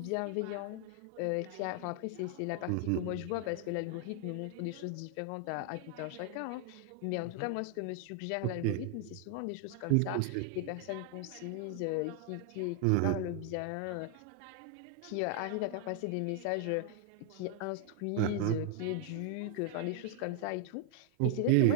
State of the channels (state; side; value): different; both; correlation 0.00